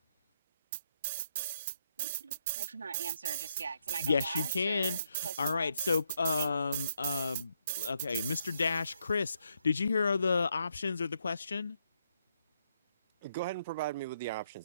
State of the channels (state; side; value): inverted; both; correlation -0.77